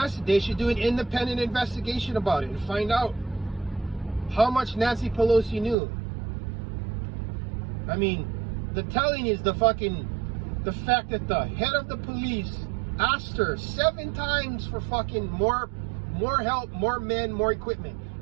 They should do an independent investigation about it and find out how much Nancy Pelosi knew. I mean, the telling is the fact that the head of the police asked her 7 times for fucking more help, more men, more equipment,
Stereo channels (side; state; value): left; drops out; at 5.8 s